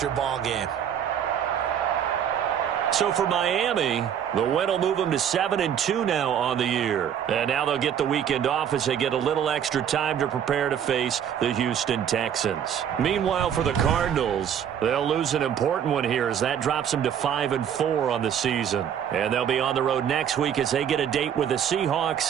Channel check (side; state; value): left; quieter; 8.9 dB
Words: your ball game. So for Miami, the win will move them to 7-2 now on the year. And now they'll get the weekend off as they get a little extra time to prepare to face the Houston Texans. Meanwhile, for the Cardinals, they'll lose an important one here as that drops them to 5-4 on the season. And they'll be on the road next week as they get a date with the